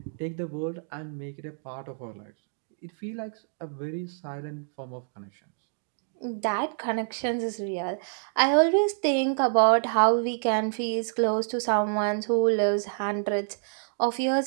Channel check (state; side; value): silent; left; digital silence